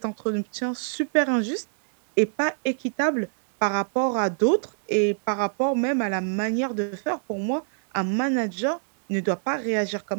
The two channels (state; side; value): silent; left; digital silence